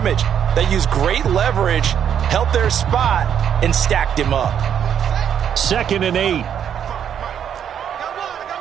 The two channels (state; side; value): quieter; left; 8.8 dB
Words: They used great leverage, held their spot, and stacked him up. 2nd and 8.